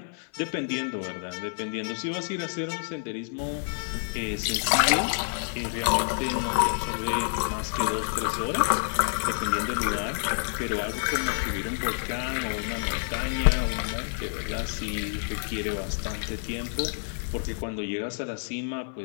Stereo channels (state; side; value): silent; right; digital silence